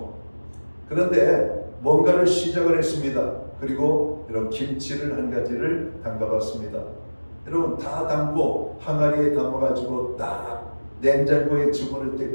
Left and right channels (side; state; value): both; inverted; correlation -1.00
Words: 그런데 뭔가를 시작을 했습니다. 그리고 이런 김치를 한 가지를 담가봤습니다. 여러분 다 담고 항아리에 담아가지고 딱 냉장고에 집어넣을 때